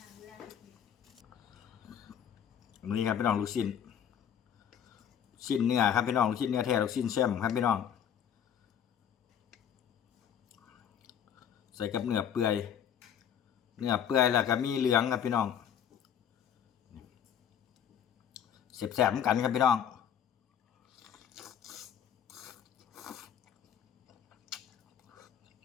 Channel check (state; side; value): quieter; right; 8.9 dB